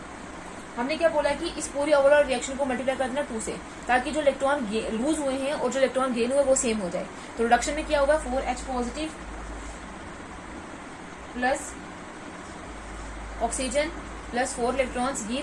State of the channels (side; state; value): both; identical; correlation 1.00